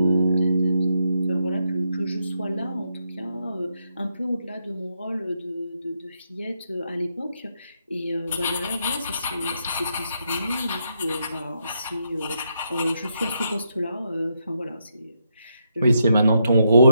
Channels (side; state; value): both; inverted; correlation -0.80